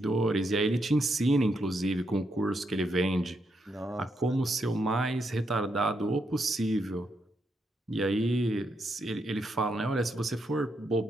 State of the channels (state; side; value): normal; both; correlation 0.80